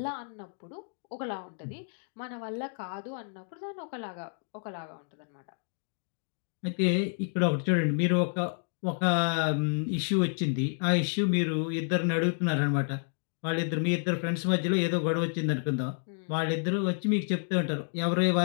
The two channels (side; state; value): right; silent; digital silence